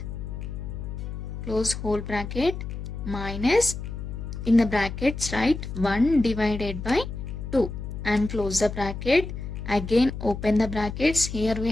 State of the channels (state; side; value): noise; left; hum, 7 dB below the sound